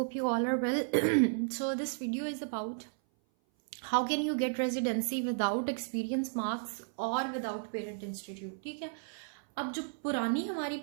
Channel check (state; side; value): silent; left; 55 dB below the other